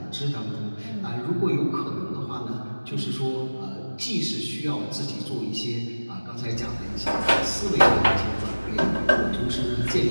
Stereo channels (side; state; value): both; inverted; correlation -1.00